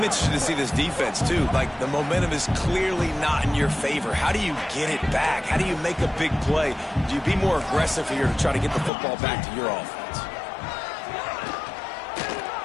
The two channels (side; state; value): right; drops out; at 8.9 s